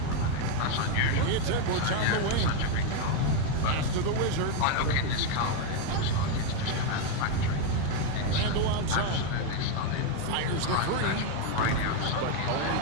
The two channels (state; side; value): different; both; correlation 0.02